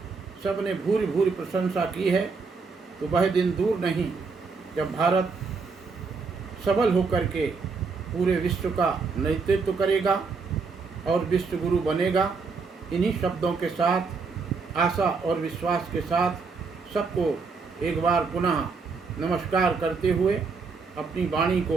सबने भूरी भूरी प्रशंसा की है। तो वह दिन दूर नहीं जब भारत सबल होकर के पूरे विश्व का नेतृत्व करेगा और विश्व गुरु बनेगा। इन्हीं शब्दों के साथ, आशा और विश्वास के साथ सबको एक बार पुनः नमस्कार करते हुए अपनी वाणी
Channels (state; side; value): quieter; left; 4.7 dB